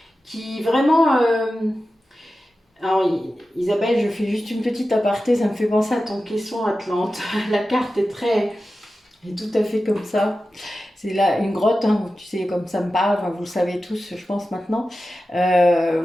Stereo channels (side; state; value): both; normal; correlation 0.93